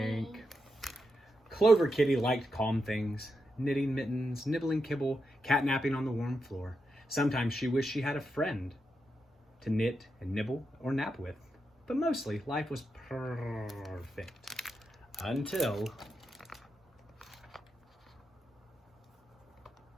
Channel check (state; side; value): normal; both; correlation 0.85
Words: Clover Kitty liked calm things, knitting mittens, nibbling kibble, catnapping on the warm floor. Sometimes she wished she had a friend to knit and nibble or nap with. But mostly, life was perfect. Until...